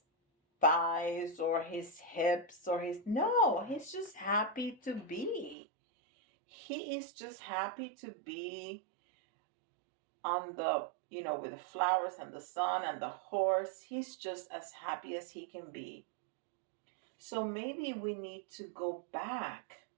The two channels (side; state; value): left; drops out; at 5.6 s